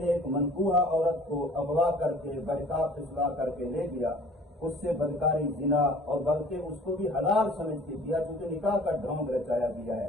ایک منکوحہ عورت کو اغوا کر کے بہتاب پھسلا کر کے لے گیا، اس سے بدکاری، زنا، اور بلکہ اس کو بھی حلال سمجھ کے دیا، کیونکہ نکاح کا ڈھونگ رچایا گیا ہے۔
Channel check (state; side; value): normal; both; correlation 0.49